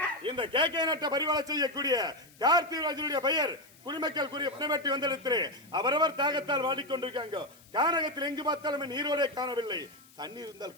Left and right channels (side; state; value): left; noise; hiss, 26 dB below the sound